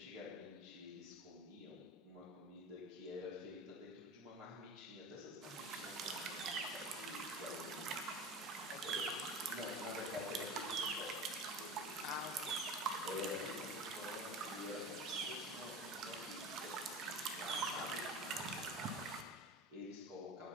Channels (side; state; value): both; normal; correlation 0.33